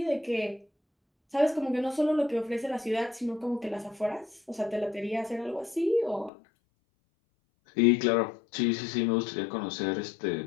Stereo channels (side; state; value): right; drops out; at 6.3 s